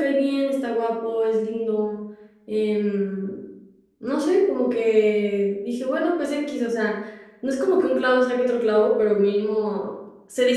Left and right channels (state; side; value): identical; both; correlation 1.00